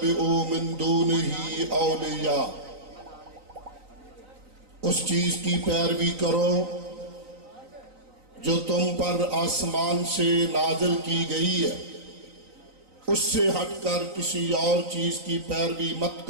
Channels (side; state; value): left; late; 3.9 ms